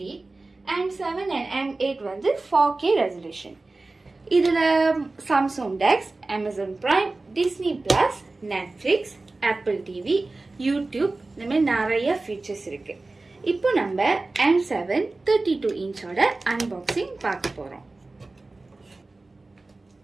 M7 and M8 வந்து 4K resolution. இதுல Samsung Dex, Amazon Prime, Disney Plus, Netflix, Apple TV, YouTube இந்த மாதிரி நிறைய ஃபீச்சர்ஸ் இருக்கு. இப்போ நம்ம M7 32 inch-ஓட அன்பாக்சிங் பார்க்க போறோம்.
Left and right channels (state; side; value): quieter; left; 3.3 dB